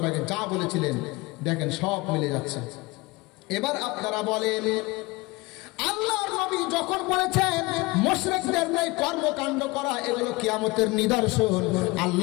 আগে যা বলেছিলেন দেখেন সব মিলে যাচ্ছে। এবার আপনারা বলেন, আল্লাহর নবী যখন বলেছেন মুশরিকদের ন্যায় কর্মকাণ্ড করা এগুলো কিয়ামতের নিদর্শন,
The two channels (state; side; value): quieter; right; 23.1 dB